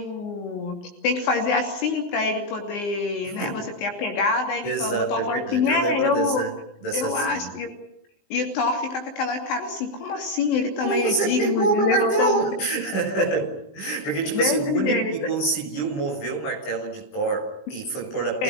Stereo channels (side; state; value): right; late; 20 ms